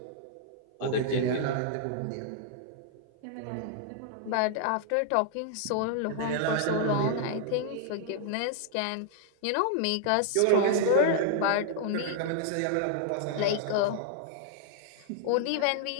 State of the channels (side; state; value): both; different; correlation -0.01